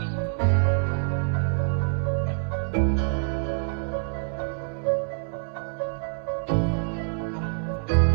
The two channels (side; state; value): left; silent; 61 dB below the other